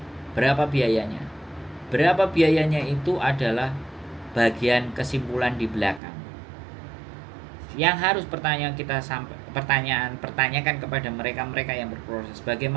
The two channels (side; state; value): left; drops out; at 6.0 s